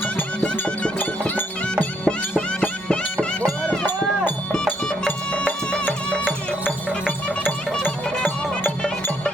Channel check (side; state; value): both; normal; correlation 0.71